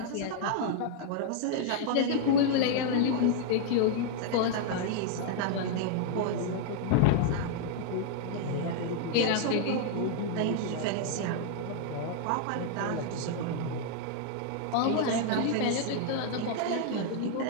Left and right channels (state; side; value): different; both; correlation 0.00